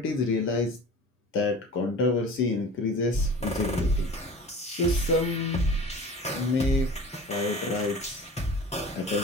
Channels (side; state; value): both; normal; correlation 0.39